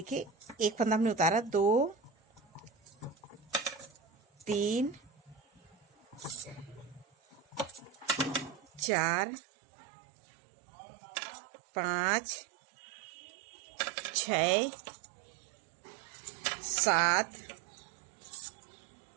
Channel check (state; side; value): drops out; left; at 8.9 s